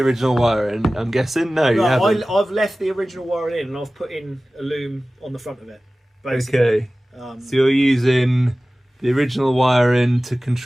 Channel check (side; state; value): both; normal; correlation 0.97